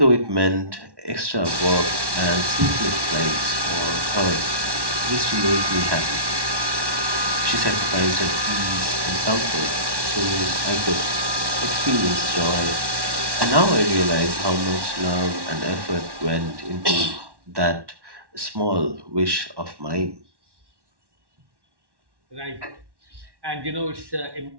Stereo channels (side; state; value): left; late; 1.1 ms